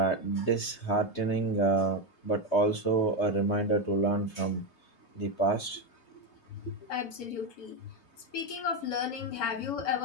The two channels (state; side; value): late; right; 3.2 ms